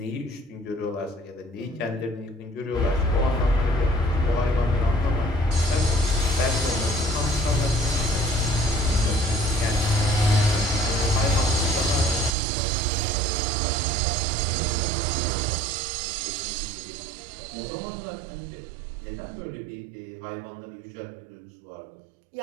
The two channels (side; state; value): left; drops out; at 12.4 s